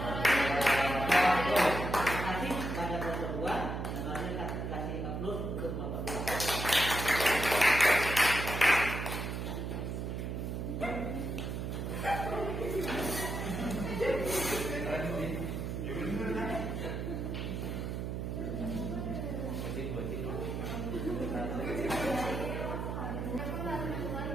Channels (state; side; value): noise; right; hum, 3 dB below the sound